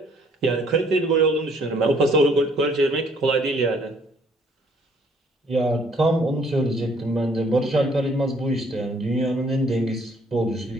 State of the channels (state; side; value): normal; both; correlation 0.62